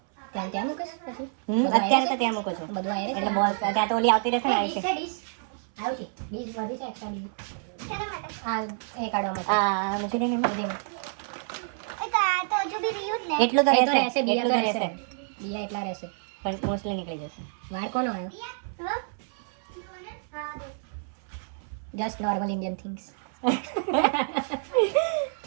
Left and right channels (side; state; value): left; silent; 59 dB below the other